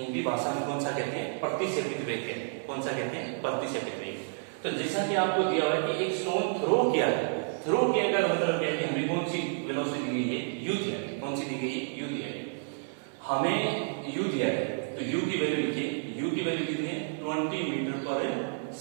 भाषा में कौन सा कहते हैं प्रतिसेपित वेग कहते हैं। कौन सा कहते हैं प्रतिसेपित वेग। तो जैसा कि आपको दिया हुआ है कि एक स्टोन थ्रो किया है, थ्रो किया का मतलब क्या है कि हमें कौन सी वेलोसिटी दी गई है, u दिया है। कौन सी दी गई है, u दिया है। हमें u दिया है तो u की वैल्यू लिखिए, u की वैल्यू कितनी है 20 मीटर पर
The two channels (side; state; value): left; silent; 57 dB below the other